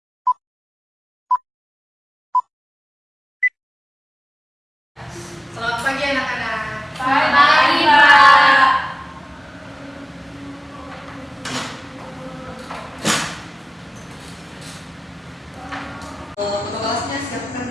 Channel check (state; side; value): normal; both; correlation 0.98